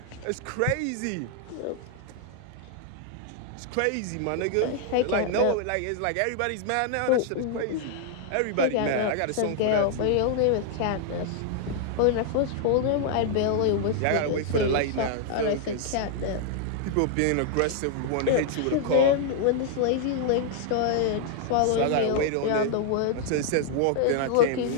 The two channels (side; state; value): both; different; correlation 0.00